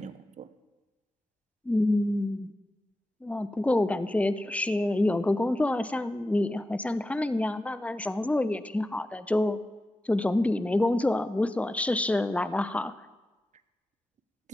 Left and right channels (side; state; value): both; normal; correlation 0.92